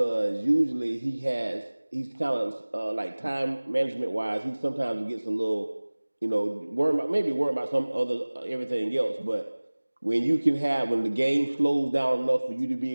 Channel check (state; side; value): inverted; both; correlation -1.00